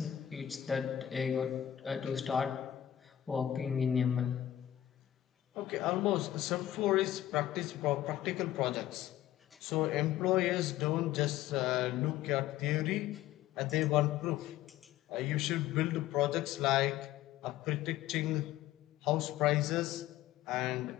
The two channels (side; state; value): right; quieter; 12.5 dB